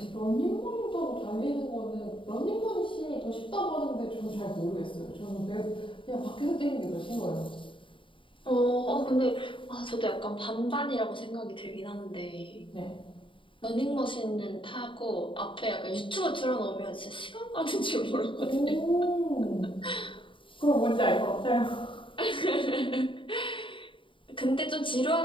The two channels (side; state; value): right; late; 0.25 ms